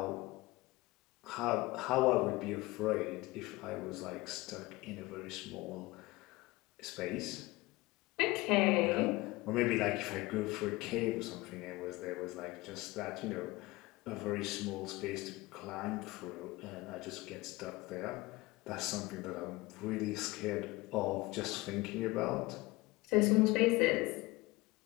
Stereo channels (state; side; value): quieter; right; 21.2 dB